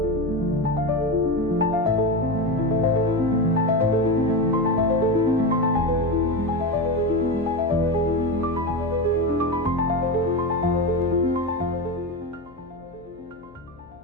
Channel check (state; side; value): noise; left; hum, 25 dB below the sound